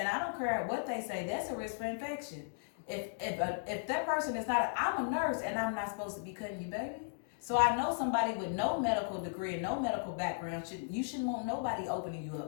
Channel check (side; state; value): right; silent; digital silence